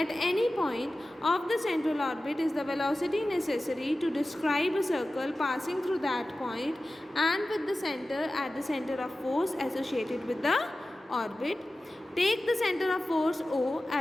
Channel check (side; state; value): both; normal; correlation 0.95